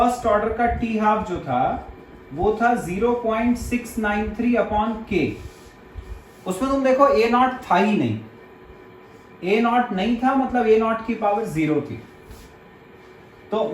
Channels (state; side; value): identical; both; correlation 1.00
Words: ऑर्डर का टी हाफ जो था वो था 0.693 अपॉन के, उसमें तुम देखो ए नॉट था ही नहीं, ए नॉट नहीं था मतलब ए नॉट की पावर 0 थी। तो